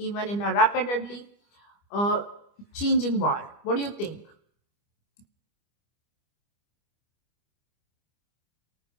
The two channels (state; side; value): late; right; 25 ms